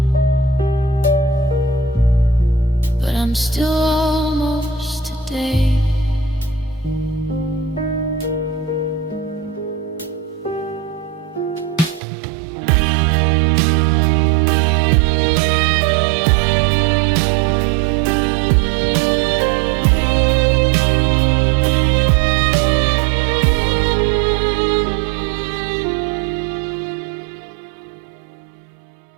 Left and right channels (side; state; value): left; drops out; at 12.0 s